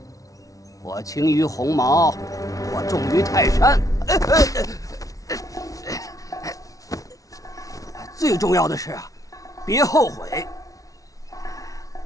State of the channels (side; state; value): right; late; 0.17 ms